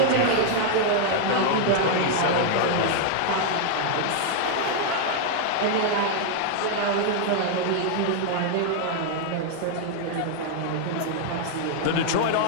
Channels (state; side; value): different; both; correlation 0.00